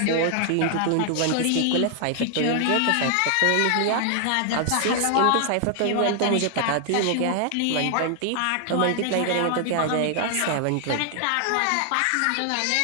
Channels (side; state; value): both; different; correlation 0.00